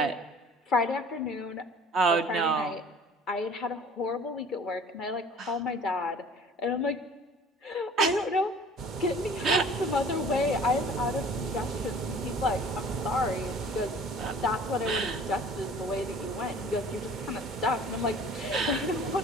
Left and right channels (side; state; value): both; normal; correlation 0.48